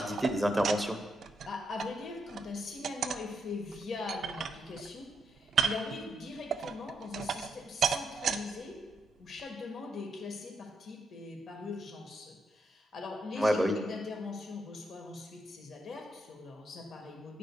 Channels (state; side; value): normal; both; correlation 0.79